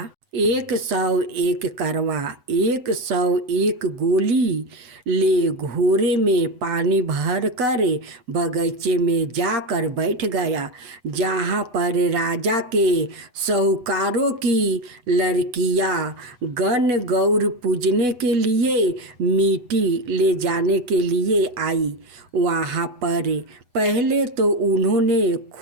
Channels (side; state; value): left; late; 8.1 ms